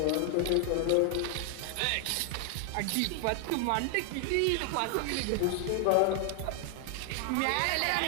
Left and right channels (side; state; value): both; different; correlation 0.00